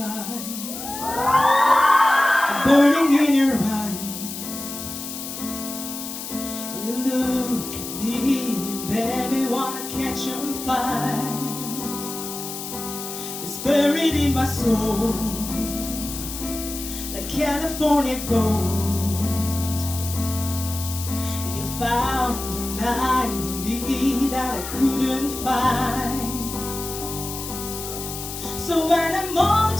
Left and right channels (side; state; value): left; noise; hiss, 8 dB below the sound